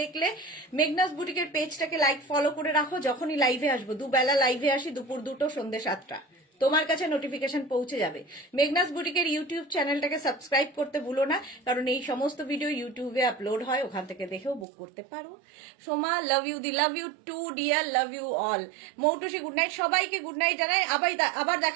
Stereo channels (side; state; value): left; drops out; at 14.7 s